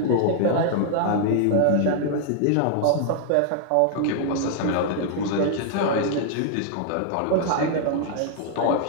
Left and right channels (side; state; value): both; different; correlation 0.00